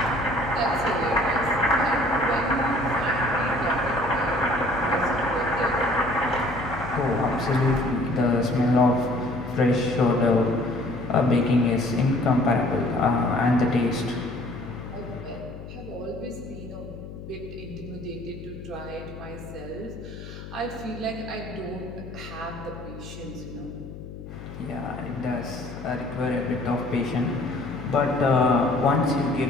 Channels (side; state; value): left; noise; hum, 12 dB below the sound